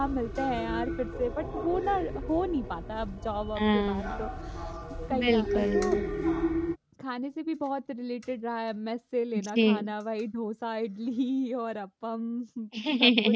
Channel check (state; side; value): identical; both; correlation 1.00